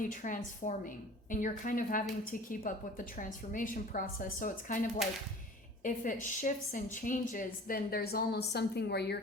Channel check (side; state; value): both; normal; correlation 0.43